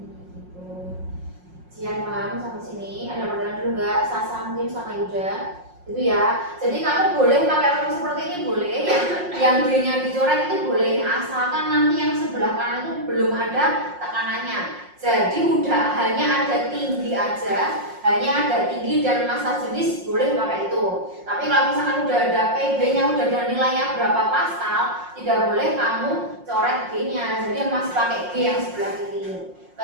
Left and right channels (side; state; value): left; late; 5.5 ms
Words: Jian paham sampai sini? Ada pertanyaan dulu nggak? Sasa mungkin sama Yuda itu ya. Jadi kamu boleh pakai rumus seperti ini, boleh yang D-nya dicoret itu boleh, asalkan nanti yang sebelah kanan itu belum ada tekanannya. Jadi udah hanya ada tinggi aja, hanya ada tinggi dan massa jenis, boleh pakai itu. Tapi kalau misalkan udah ada PB-nya, udah ada nilainya berapa pascal, tidak boleh kamu coret G-nya. Jadi masih pakai G yang sebelah kiri.